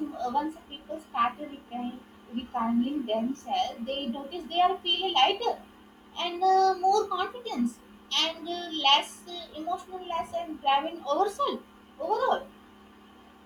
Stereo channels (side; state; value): both; identical; correlation 1.00